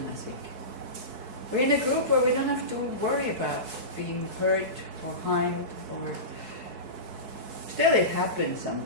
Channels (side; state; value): left; late; 4.6 ms